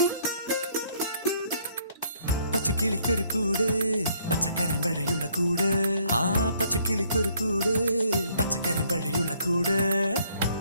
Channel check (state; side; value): inverted; both; correlation -0.65